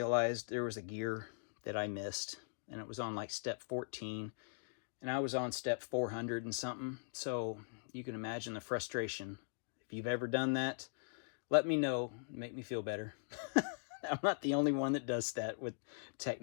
there was a gear that I missed, and it was on like step 14, and I was on step 400 and something. So you can imagine the frustration. If you've ever done that, let me know, make me feel better. I'm not the only one that does that with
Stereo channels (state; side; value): silent; right; digital silence